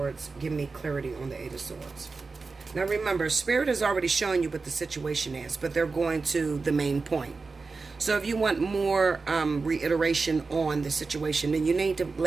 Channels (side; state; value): left; quieter; 4.2 dB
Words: Give me clarity on the Eight of Swords. Now remember, Spirit has already shown you what the situation is, but they're going to the main point. So if you want more reiteration on the situation, then you need to